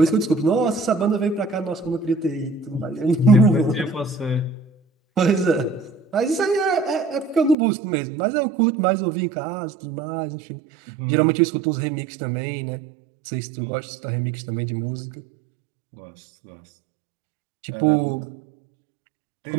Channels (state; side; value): drops out; left; at 7.6 s